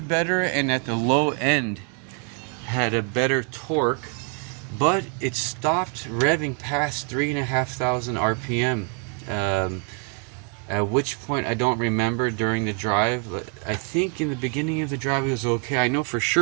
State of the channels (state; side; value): quieter; left; 38.5 dB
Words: better and at the low end had a better torque, but it stopped revving past 3,500 RPM. At which point I don't remember during the drive. I think in the beginning of the drive it was okay. I know for